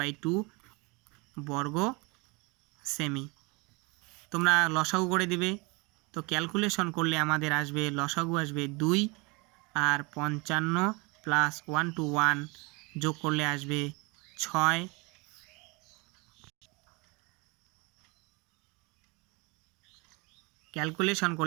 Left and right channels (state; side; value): quieter; left; 27.9 dB